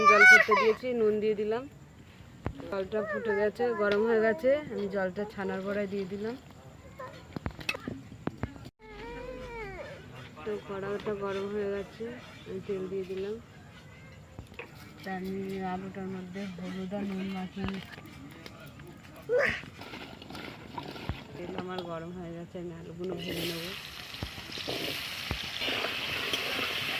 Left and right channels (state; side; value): identical; both; correlation 1.00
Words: জল করতে দিয়েছি, নুন দিয়ে দিলাম। জলটা ফুটে গেছে, গরম হয়ে গেছে, আমি জলটা ছানার বড়ায় দিয়ে দিলাম। তো কড়াটা গরম হয়ে গেছে, আমি তেল দিয়ে দিলাম। তা আমি আলুটার মধ্যে হলুদ আর নুন মাখিয়ে তেল আমার গরম হয়ে গেছে, আমি আলুগুলো ভেজে নেবো।